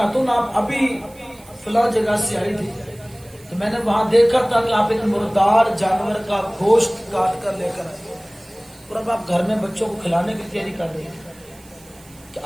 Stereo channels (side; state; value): right; noise; hiss, 25 dB below the sound